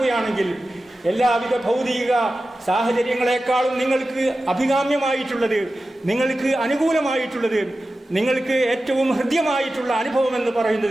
എല്ലാവിധ ഭൗതിക സാഹചര്യങ്ങളെക്കാളും നിങ്ങൾക്ക് അഭികാമ്യമായിട്ടുള്ളത്, നിങ്ങൾക്ക് അനുകൂലമായിട്ടുള്ളത്, നിങ്ങൾക്ക് ഏറ്റവും ഹൃദ്യമായിട്ടുള്ള അനുഭവം എന്ന്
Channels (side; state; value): both; normal; correlation 0.94